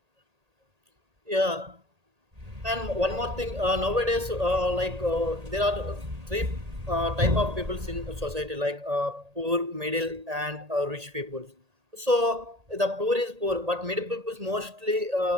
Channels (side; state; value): left; late; 1.8 ms